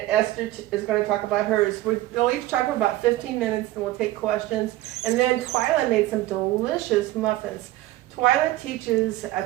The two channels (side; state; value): left; quieter; 16.4 dB